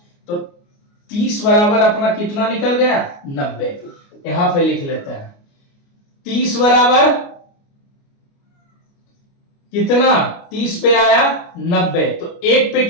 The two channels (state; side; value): late; right; 29 ms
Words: तो 30 बराबर अपना कितना निकल गया? 90। यहां पे लिख लेते हैं 30 बराबर कितना 30 पे आया 90, तो 1 पे